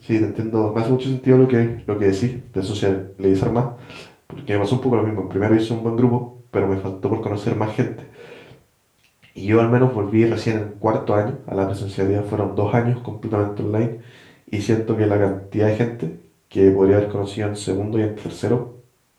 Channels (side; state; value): both; identical; correlation 1.00